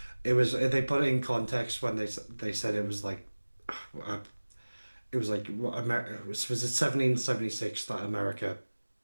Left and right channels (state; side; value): inverted; both; correlation -1.00